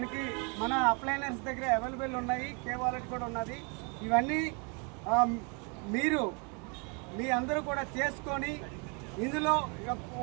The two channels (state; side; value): quieter; left; 34.4 dB